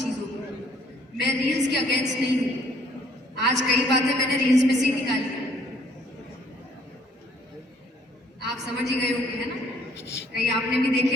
को। मैं रील्स के अगेंस्ट नहीं हूं, आज कई बातें मैंने रील्स में से ही निकाली है, आप समझ ही गए होंगे, है ना? कहीं आपने भी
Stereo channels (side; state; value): both; normal; correlation 0.62